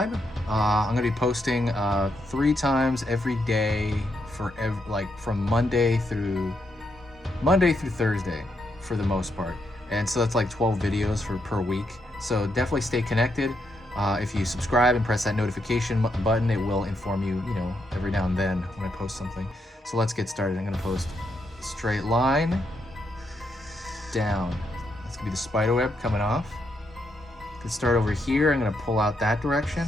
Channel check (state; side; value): normal; both; correlation 0.79